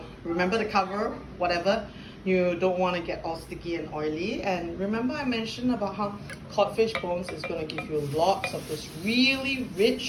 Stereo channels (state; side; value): identical; both; correlation 1.00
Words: remember the cover, whatever. You don't want to get all sticky and oily. And remember I mentioned about how codfish bones is going to give you lots of this really